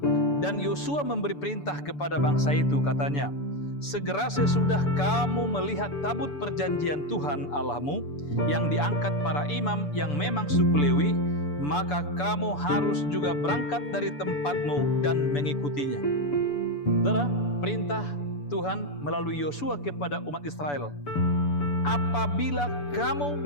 Dan Yosua memberi perintah kepada bangsa itu, katanya, segera sesudah kamu melihat tabut perjanjian Tuhan Allahmu yang diangkat para imam yang memang suku Lewi, maka kamu harus juga berangkat dari tempatmu dan mengikutinya. Saudara, perintah Tuhan melalui Yosua kepada umat Israel. Apabila kamu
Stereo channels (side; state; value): right; late; 6.9 ms